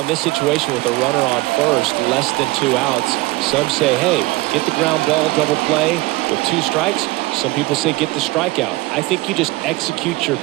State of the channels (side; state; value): left; quieter; 21.0 dB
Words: in this situation with a runner on first, less than 2 outs, some say, hey, get the ground ball, double play with 2 strikes. Some people say get the strikeout. I think you just execute your